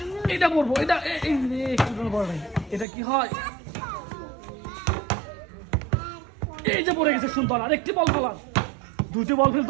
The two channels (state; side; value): drops out; left; at 2.9 s